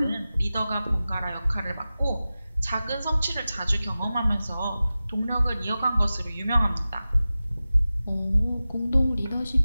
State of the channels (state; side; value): inverted; both; correlation -0.95